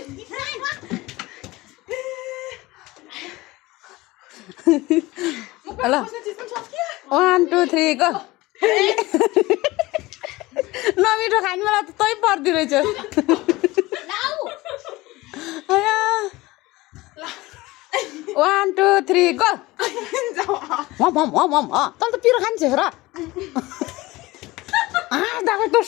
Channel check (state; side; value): quieter; right; 20.1 dB